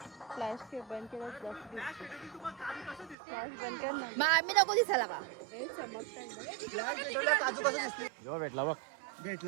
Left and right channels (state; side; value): drops out; left; at 3.2 s